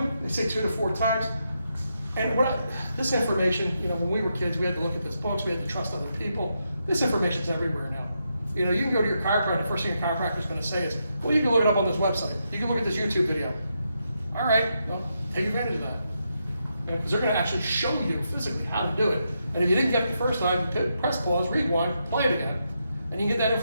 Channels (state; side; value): inverted; both; correlation -0.83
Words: They say 2 to 4 times. And this information, when we were kids, we had to look at this books, we had to trust other people. This information's everywhere now. You know, you can go to your chiropractor, first thing your chiropractor's gonna say is, well, you can look it up on this website. You can look at this YouTube video. All right, well, take advantage of that. Because they're gonna actually show you physically how to do it. And if you didn't get it the first time, press pause, rewind, play it again, and you can get that